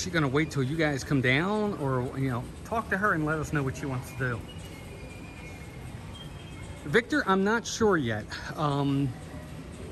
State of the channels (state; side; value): identical; both; correlation 1.00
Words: going to wait till you guys come down, or, you know, talk to her and let us know what she wants to do. Victor, I'm not sure yet.